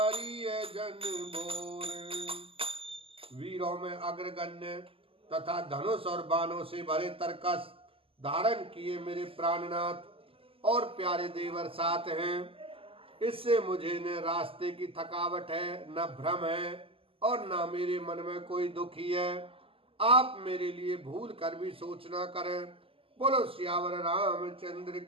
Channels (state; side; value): late; left; 0.26 ms